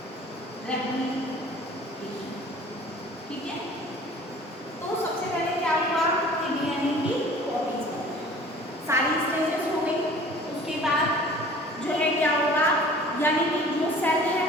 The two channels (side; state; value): both; normal; correlation 0.47